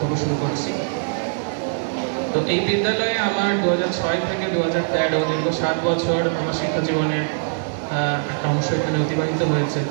শুরু করছি। তো এই বিদ্যালয়ে আমার 2006 থেকে 2013 দীর্ঘ 7 বছর আমার শিক্ষা জীবনের একটা অংশ এখানে অতিবাহিত হয়েছে,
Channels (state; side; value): silent; left; digital silence